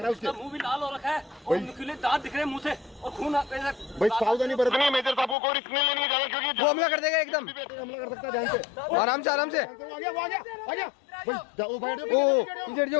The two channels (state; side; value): drops out; right; at 5.4 s